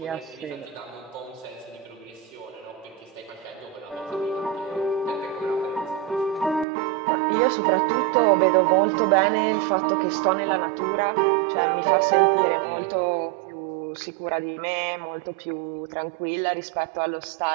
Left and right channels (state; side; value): drops out; left; at 6.7 s